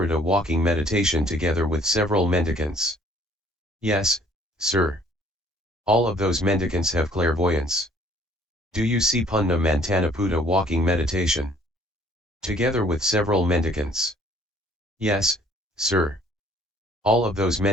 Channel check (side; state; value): both; normal; correlation 0.58